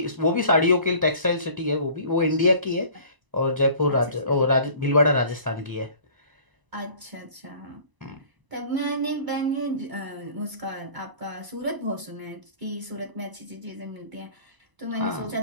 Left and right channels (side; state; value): left; late; 1.0 ms